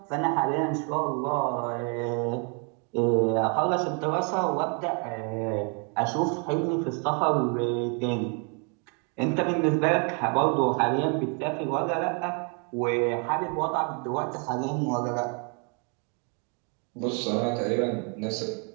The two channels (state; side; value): quieter; left; 37.6 dB